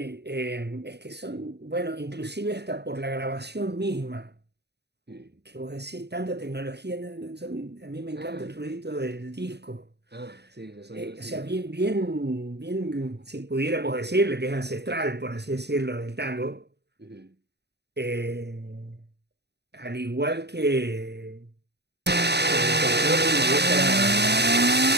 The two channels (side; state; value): left; late; 0.49 ms